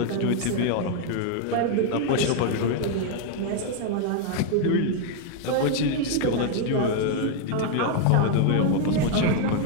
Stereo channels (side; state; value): both; different; correlation 0.00